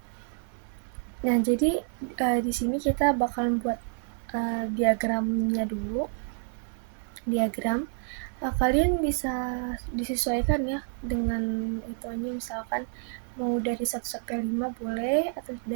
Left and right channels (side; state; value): left; silent; 59 dB below the other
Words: Nah, jadi di sini kita bakalan buat diagramnya dulu. Diagram kalian bisa disesuaikan ya dengan ituannya, misalkan mau dari 1 sampai 5 boleh atau